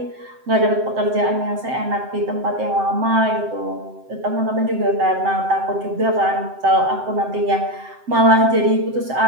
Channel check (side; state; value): left; late; 7.7 ms